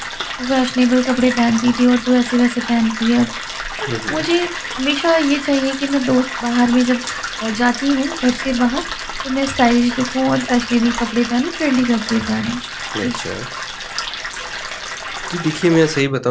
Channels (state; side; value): identical; both; correlation 1.00